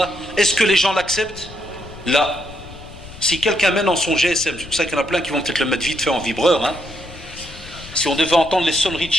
est-ce que les gens l'acceptent? Là, si quelqu'un met dans son GSM, c'est pour ça qu'il y en a plein qui vont peut-être le mettre vite fait en vibreur, hein. Si on devait entendre les sonneries de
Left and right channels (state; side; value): noise; left; rumble, 16 dB below the sound